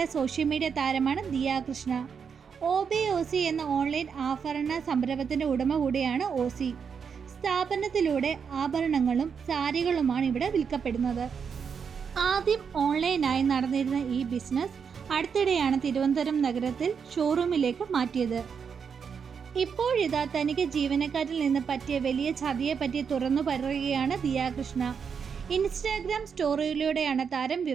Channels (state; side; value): quieter; left; 6.5 dB